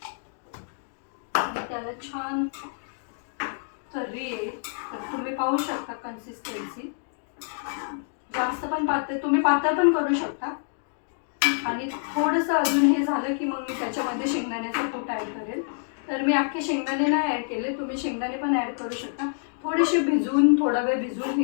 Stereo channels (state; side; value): silent; right; digital silence